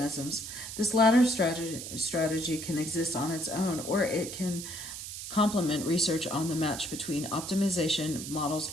This latter strategy can exist on its own, or it can complement research on the match between optimization models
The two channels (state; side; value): noise; right; hiss, 8 dB below the sound